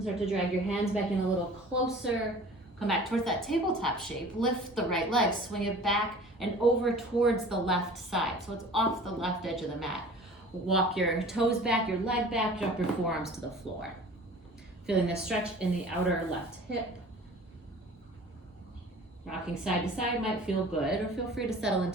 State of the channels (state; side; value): normal; both; correlation 0.44